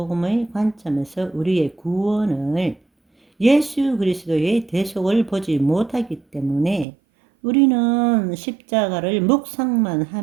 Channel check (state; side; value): drops out; left; at 6.9 s